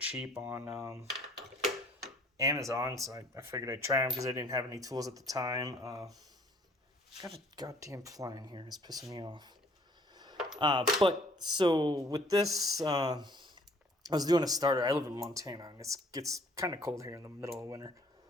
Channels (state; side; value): normal; both; correlation 0.57